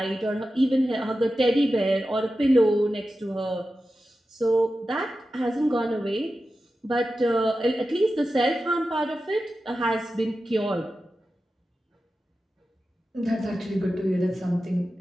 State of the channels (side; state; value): both; normal; correlation 0.92